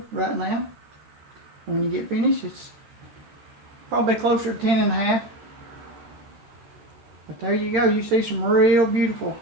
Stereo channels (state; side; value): late; left; 13 ms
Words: right now. When you get finished, it's probably closer to 10.5. But there you go. You see some real beautiful